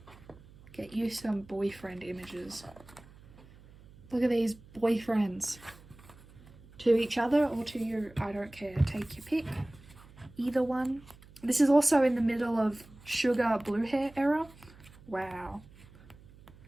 Get you some boyfriend images. Look at these boyfriends. To each other or to you, I don't care. Take your pick. Either one. This is also in the middle of Sugar Blue Hair era. Wow.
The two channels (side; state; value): right; noise; hum, 23 dB below the sound